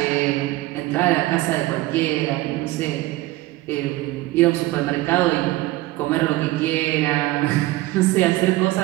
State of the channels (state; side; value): quieter; left; 18.2 dB